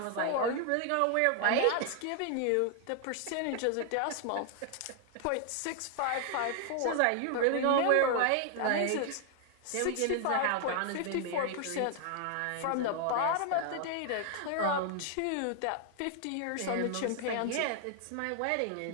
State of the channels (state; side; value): different; both; correlation 0.00